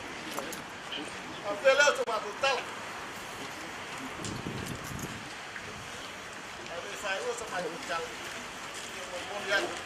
a pele o ma tala a ve fai o se mai tala mo ya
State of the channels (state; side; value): identical; both; correlation 1.00